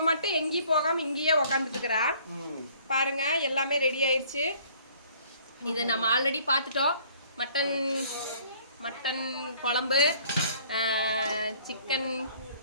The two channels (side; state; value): both; inverted; correlation -0.57